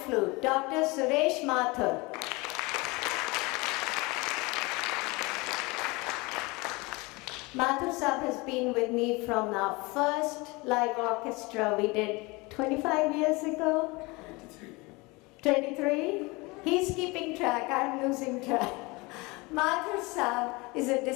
Dr. Suresh Mathur. Mathur Sahab has been with me from our first live orchestra we did 25 years ago. 23? He's keeping track, I'm losing track. Mathur Sahab is a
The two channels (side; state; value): right; quieter; 24.9 dB